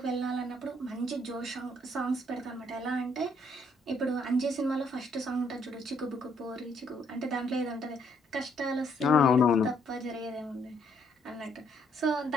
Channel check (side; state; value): both; normal; correlation 0.69